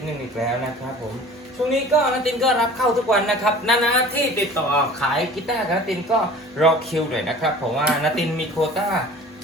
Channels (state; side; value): normal; both; correlation 0.44